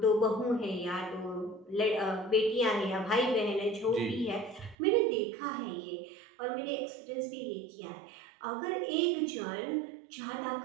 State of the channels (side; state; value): left; drops out; at 4.8 s